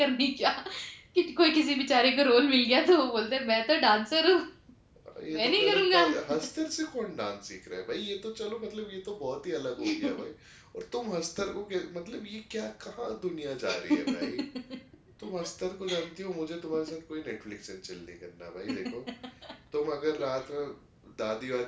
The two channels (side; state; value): both; identical; correlation 1.00